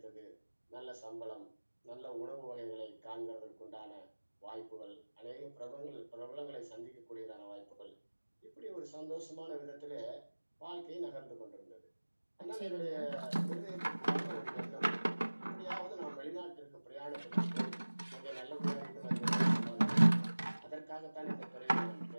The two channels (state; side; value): inverted; both; correlation -1.00